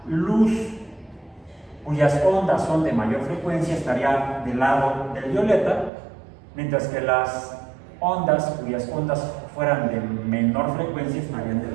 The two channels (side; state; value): left; drops out; at 5.9 s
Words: luz cuyas ondas son de mayor frecuencia estaría del lado del violeta, mientras que las ondas cuyas ondas fueran de menor frecuencia estarían del